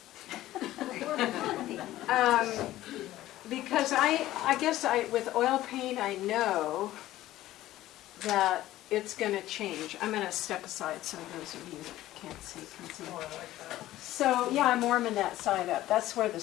Because I guess with oil paint, I know that it's going to change. I'm going to step aside so those of you that can't see can see. Oh, I like that. So yeah, I'm warming that side up. That's where the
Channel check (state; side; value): quieter; right; 15.0 dB